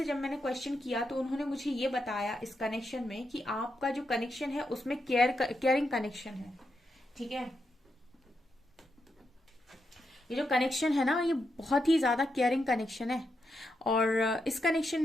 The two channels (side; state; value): both; normal; correlation 0.84